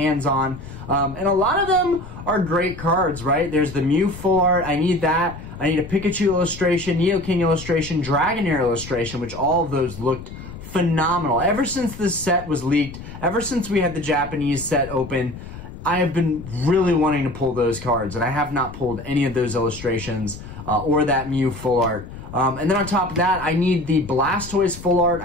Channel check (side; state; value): left; noise; rumble, 13 dB below the sound